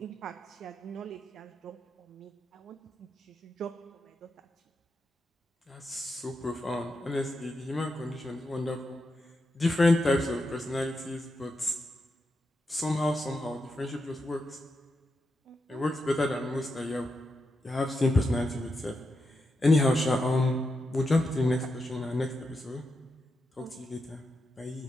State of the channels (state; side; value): normal; both; correlation 0.86